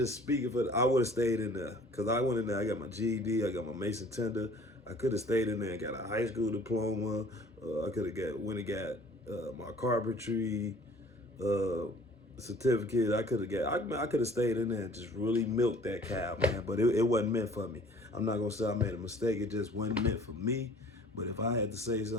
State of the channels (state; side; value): normal; both; correlation 0.51